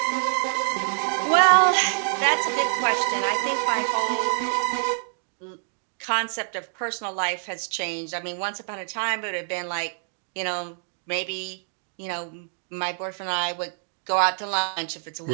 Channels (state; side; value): silent; left; 61 dB below the other